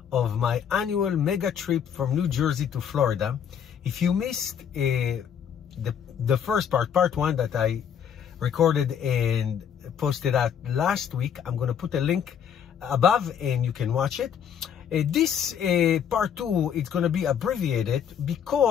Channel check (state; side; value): quieter; right; 8.2 dB